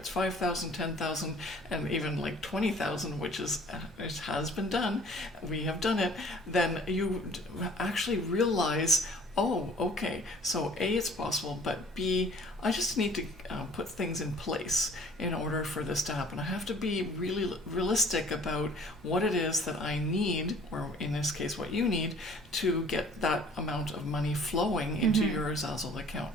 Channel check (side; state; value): both; normal; correlation 0.53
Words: 5,000, 10,000, and even like 20,000, which is, it has been done, we have done it, then you actually realize, oh, okay, so A, it's possible, but B, I just need to put things in place in order for this to happen. I have to be really realistic about what it is that I need, or in this case, what you need, to get that amount of money flowing into your Zazzle